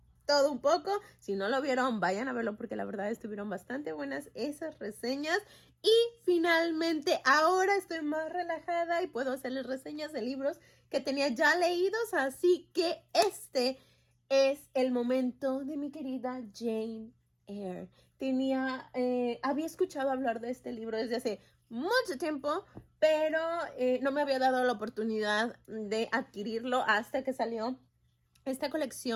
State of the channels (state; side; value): identical; both; correlation 1.00